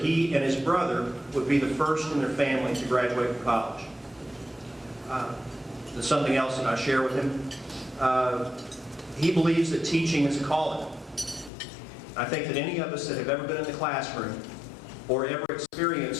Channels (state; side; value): drops out; right; at 11.5 s